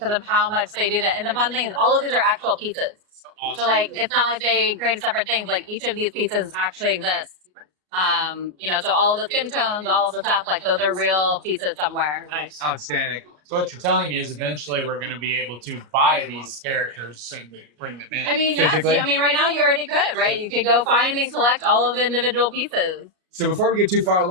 of how much they do that. And the fun thing is all of these are actual pieces. So like, it's not like they created separate things. Like each of these pieces actually exists. You know, so all of the skin tones, all of the stuff, like those are real pieces somewhere. Nice. Outstanding. So what you're telling me is eventually we're going to be able to buy these characters and bring them in. I mean, yes. Physically? I mean, right now you already could, right? You could go find and collect all of the individual pieces. So before we get too far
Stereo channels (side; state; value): left; late; 33 ms